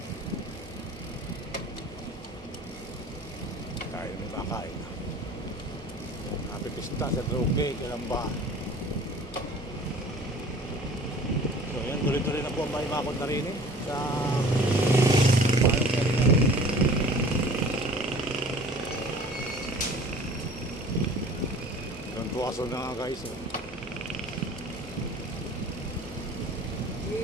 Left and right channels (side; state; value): both; normal; correlation 0.46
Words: Kaya may makain. Napipista sa droge, kailan ba? So yan, tuloy-tuloy na po ang bakod na rin sa doon po aso na nga guys.